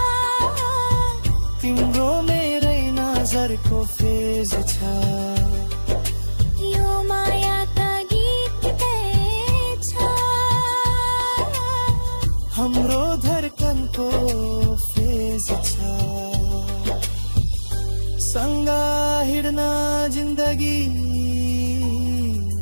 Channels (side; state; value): both; inverted; correlation -1.00